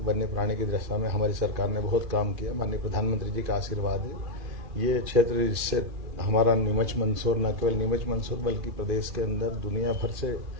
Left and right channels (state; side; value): late; left; 2.5 ms